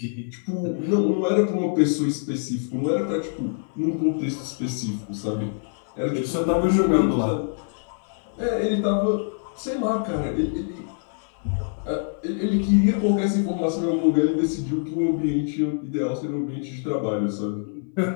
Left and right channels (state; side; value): silent; right; 62 dB below the other